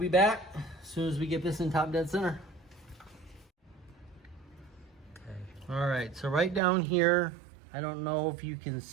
back as soon as we get this in top dead center. Okay. All right, so right down here, I don't know if you can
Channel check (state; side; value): drops out; left; at 6.6 s